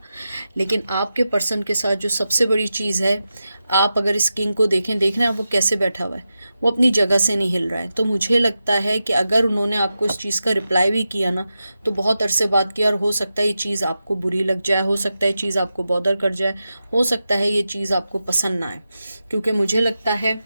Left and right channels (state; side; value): inverted; both; correlation -0.91